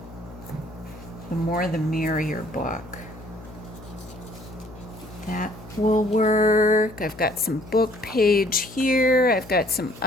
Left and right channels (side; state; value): left; noise; hum, 18 dB below the sound